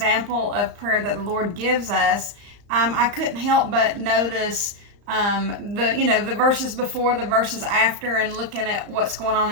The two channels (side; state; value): left; late; 34 ms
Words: of prayer that the Lord gives us, I couldn't help but notice the verses before, the verses after, and looking at what's going on